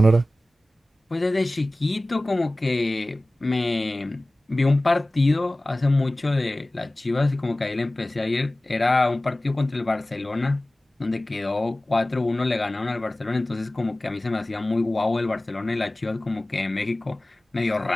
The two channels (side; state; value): both; normal; correlation 0.98